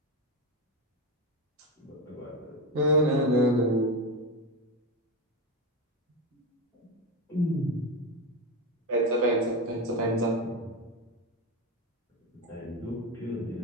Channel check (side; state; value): both; normal; correlation 0.16